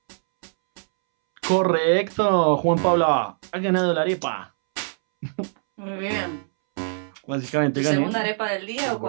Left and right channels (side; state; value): left; silent; 63 dB below the other